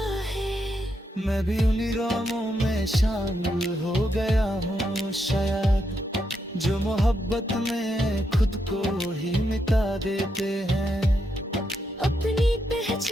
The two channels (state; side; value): normal; both; correlation 0.81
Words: है। मैं भी उन्हीं राहों में शामिल हो गया हूँ शायद, जो मोहब्बत में खुद को ही मिटा देते हैं। अपनी